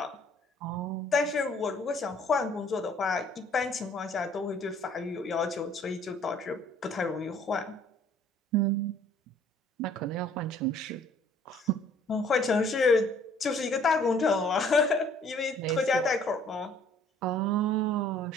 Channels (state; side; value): normal; both; correlation 0.57